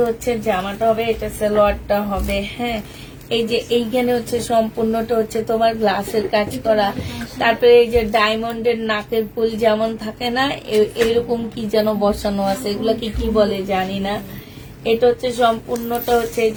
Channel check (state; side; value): identical; both; correlation 1.00